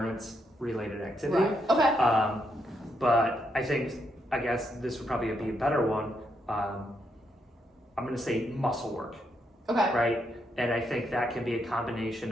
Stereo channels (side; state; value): both; normal; correlation 0.78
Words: related activity. Right. Okay. But I guess this would probably be a better one. I'm going to say muscle work. Okay. Right? And I think that can be a combination